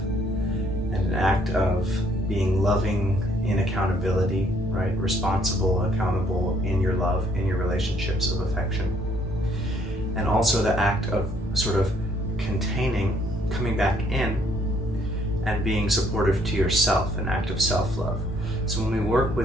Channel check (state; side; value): normal; both; correlation 0.65